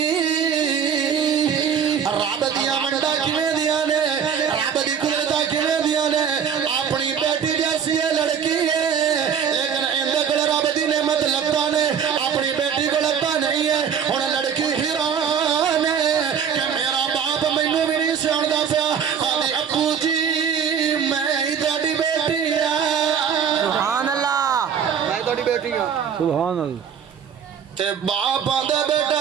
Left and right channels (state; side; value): quieter; left; 7.6 dB